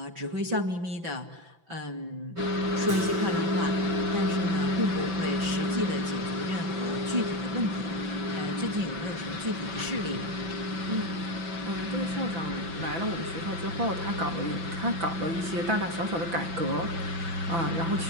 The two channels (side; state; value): left; late; 5.9 ms